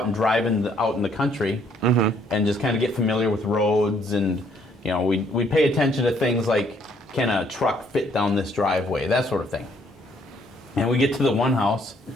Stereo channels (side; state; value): both; normal; correlation 0.66